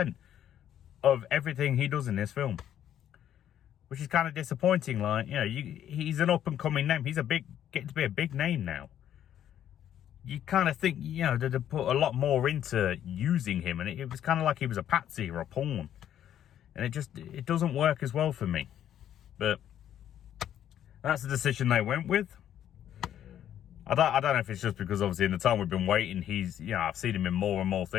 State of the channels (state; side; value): quieter; right; 10.6 dB